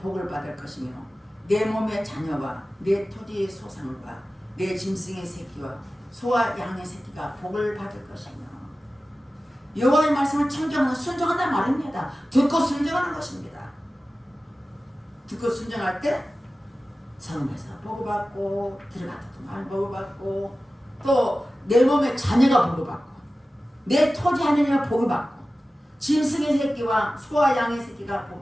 복을 받을 것이며 내 몸의 자녀와 내 토지의 소상과 내 짐승의 새끼와 소와 양의 새끼가 복을 받을 것이며 여호와의 말씀을 청정하는 순종한다는 말입니다. 듣고 순종하는 것입니다. 듣고 순종할 때 성에서 복을 받고 들어갔다도 말 복을 받고 또 내 몸의 자녀가 복을 받고 내 토지 하느님의 복을 받고 짐승의 새끼와 소와 양의 새끼가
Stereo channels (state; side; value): normal; both; correlation 0.95